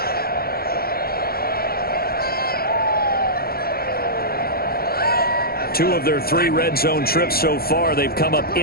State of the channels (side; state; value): right; late; 0.44 ms